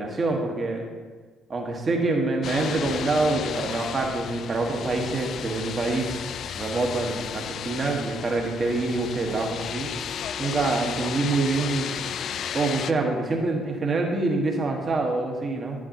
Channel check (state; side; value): normal; both; correlation 0.73